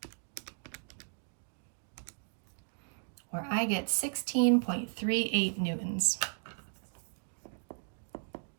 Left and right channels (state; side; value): silent; left; digital silence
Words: Or I get 16.38 newtons.